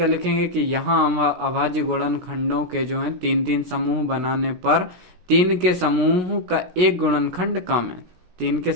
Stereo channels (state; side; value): late; left; 16 ms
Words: लिखेंगे कि यहाँ अभाज्य गुणनखंडों के जो है 3-3 समूह बनाने पर 3 के समूह का एक गुणनखंड कम है। 3 के